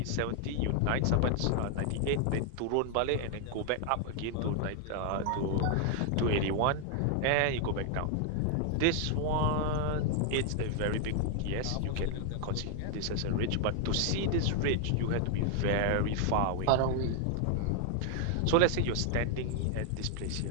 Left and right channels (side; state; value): both; different; correlation 0.00